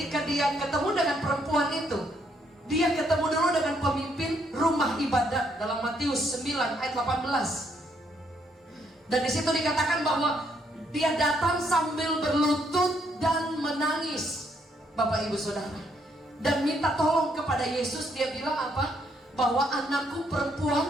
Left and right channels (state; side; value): normal; both; correlation 0.72